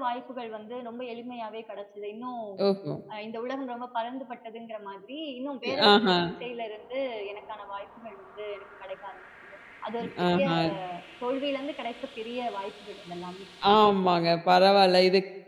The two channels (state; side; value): identical; both; correlation 1.00